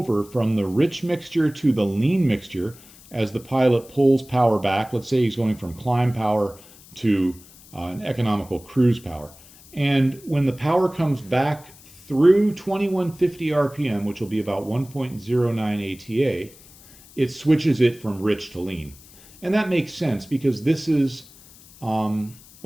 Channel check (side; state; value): left; noise; hiss, 23 dB below the sound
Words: from the rich mixture to the lean mixture as the pilot pulls power back. Let's say he's going from climb power to an economical cruise power. And when the power comes back through 2150 RPM, which will be about 1.09 ATA, it switches it from rich to lean. And that makes sense because this is, let